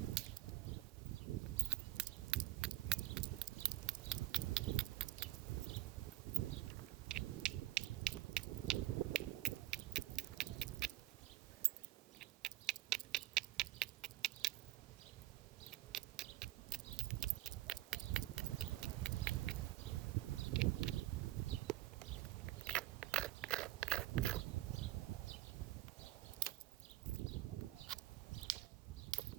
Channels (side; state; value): left; quieter; 16.3 dB